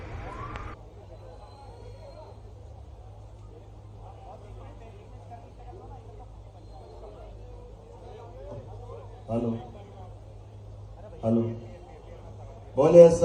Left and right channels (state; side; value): identical; both; correlation 1.00